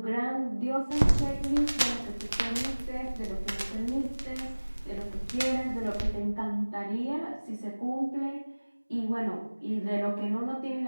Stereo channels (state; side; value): inverted; both; correlation -1.00